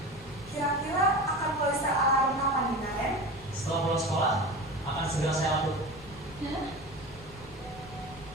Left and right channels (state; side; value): noise; left; rumble, 19 dB below the sound